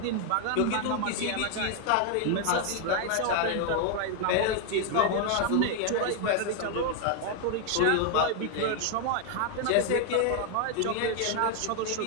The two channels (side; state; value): both; different; correlation 0.00